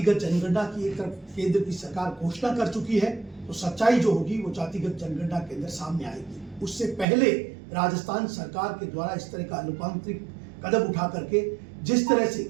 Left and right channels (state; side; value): drops out; left; at 7.1 s